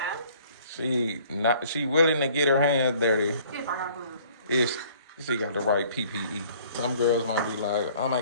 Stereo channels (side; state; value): both; inverted; correlation -0.56